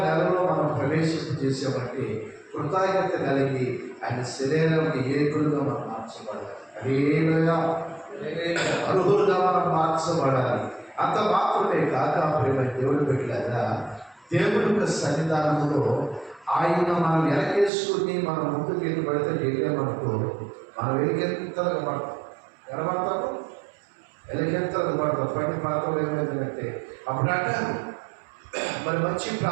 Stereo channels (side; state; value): left; drops out; at 17.7 s